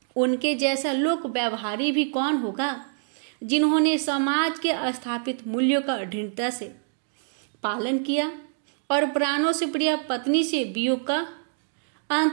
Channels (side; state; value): left; silent; digital silence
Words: उनके जैसा लोक व्यवहारी भी कौन होगा, जिन्होंने समाज के स्थापित मूल्यों का दृढ़ता से पालन किया और प्राणों से प्रिय पत्नी से वियोग का